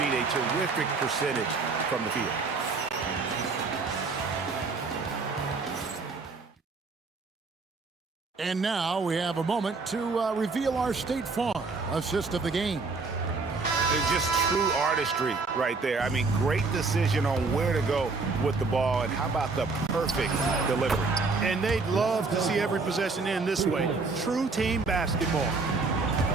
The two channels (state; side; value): quieter; left; 4.1 dB